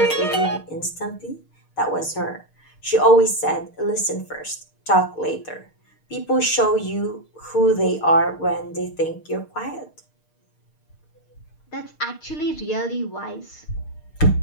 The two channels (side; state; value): right; late; 6.5 ms